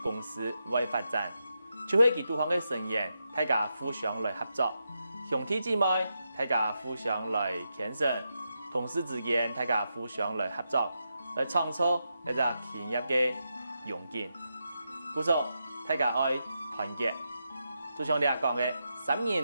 公司會發展，就係佢對方嘅成員，大家互相來合作，兄弟姊妹大家互相來牽手，同事之間大家互相來合作，來創造一個企業嘅榮景。故所大家愛團結，就像你講嘅，三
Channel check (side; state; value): both; inverted; correlation -0.86